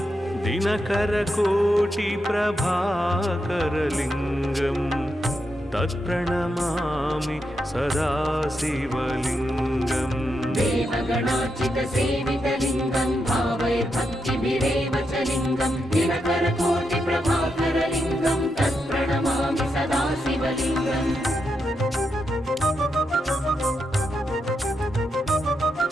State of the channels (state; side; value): normal; both; correlation 0.84